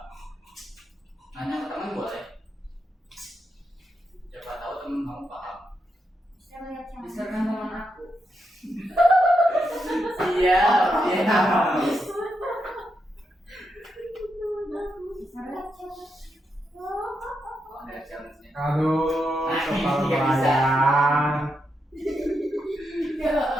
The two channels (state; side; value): normal; both; correlation 0.83